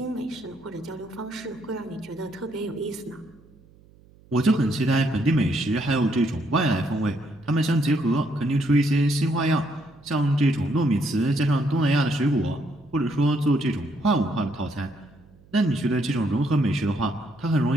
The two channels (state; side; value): noise; right; hum, 27 dB below the sound